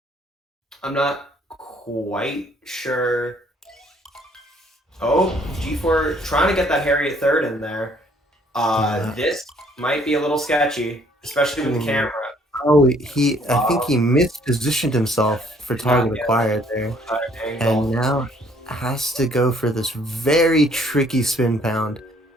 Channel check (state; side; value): normal; both; correlation 0.62